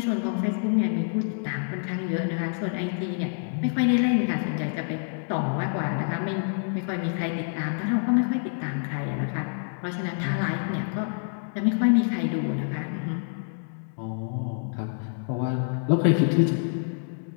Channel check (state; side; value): silent; right; digital silence